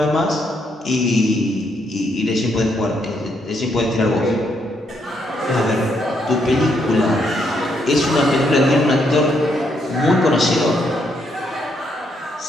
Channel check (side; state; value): both; normal; correlation 0.75